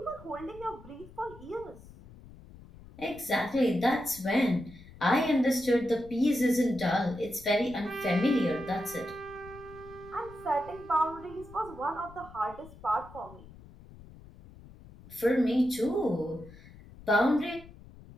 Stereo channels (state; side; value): noise; left; rumble, 19 dB below the sound